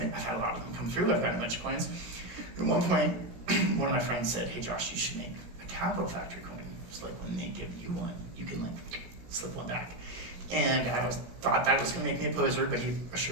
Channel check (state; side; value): late; left; 16 ms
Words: a lot of them come through. I've gotten a bunch of coins. At one point, one of my friends said, "Hey Josh, you should make a Capital Factory coin. It's like when they give you one, you can like slip one back." And I thought that was going to make me a poser, but he